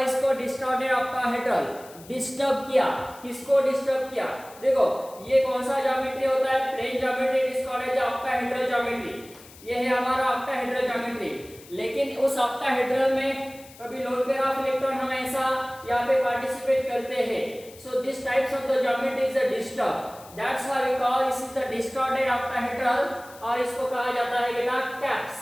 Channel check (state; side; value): noise; left; hiss, 21 dB below the sound